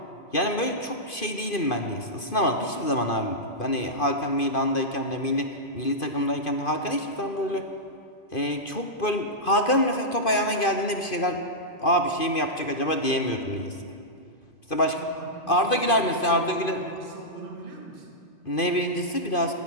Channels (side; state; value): right; late; 2.5 ms